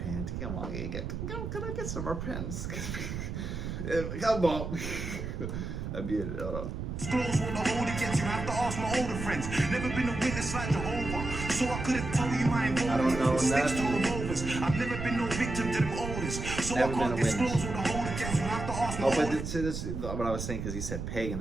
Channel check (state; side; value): noise; right; rumble, 5 dB below the sound